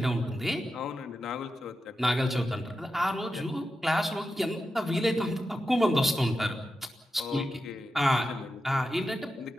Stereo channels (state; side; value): normal; both; correlation 0.90